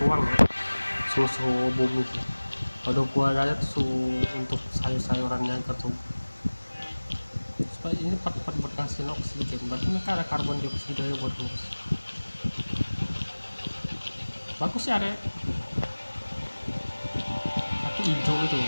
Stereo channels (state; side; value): inverted; both; correlation -1.00